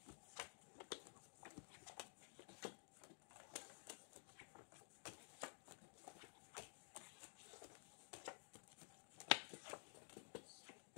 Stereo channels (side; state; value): right; silent; digital silence